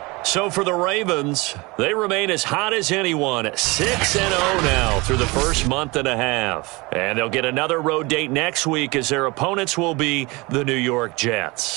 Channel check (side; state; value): left; quieter; 24.7 dB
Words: So for the Ravens, they remain as hot as anyone, 6-0 now through the first month and a half. And they'll get another road date next week as their opponents will be the New York